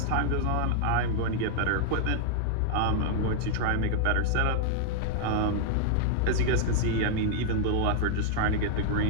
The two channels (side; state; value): both; different; correlation -0.01